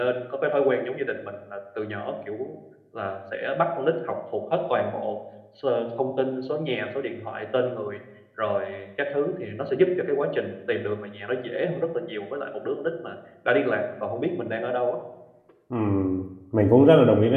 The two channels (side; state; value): both; identical; correlation 1.00